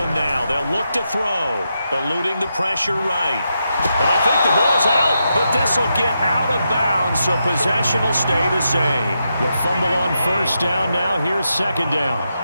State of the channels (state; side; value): inverted; both; correlation -0.84